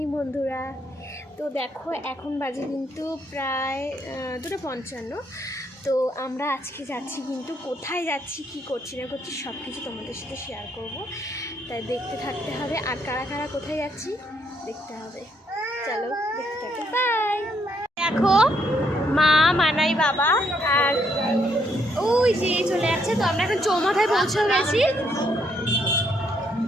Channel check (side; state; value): both; normal; correlation 0.73